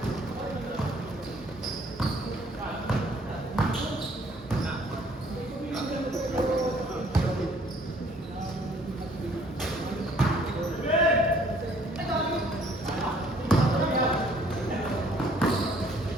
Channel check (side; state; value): both; normal; correlation 0.60